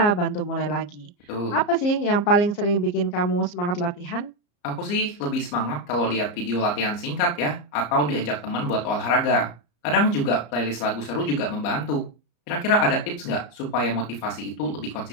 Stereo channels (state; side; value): late; right; 34 ms